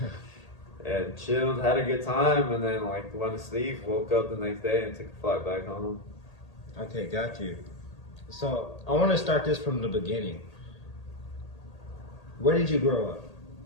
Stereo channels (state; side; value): late; right; 1.8 ms